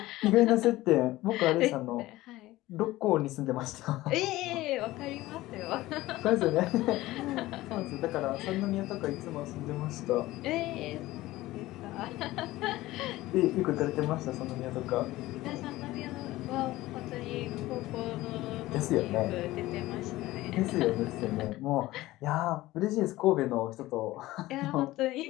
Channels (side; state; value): right; quieter; 17.4 dB